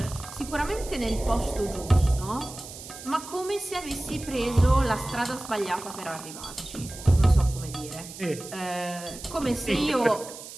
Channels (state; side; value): noise; right; hiss, 13 dB below the sound